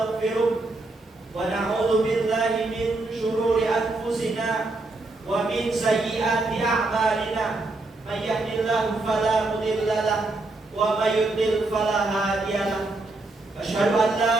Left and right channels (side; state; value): left; quieter; 3.0 dB